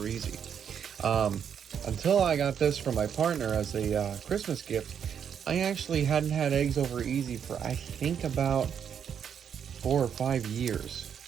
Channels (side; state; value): left; quieter; 8.0 dB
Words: easy. Until I got this from my partner as a Christmas gift, I actually hadn't had eggs over easy for, I think, about 4 or 5 years.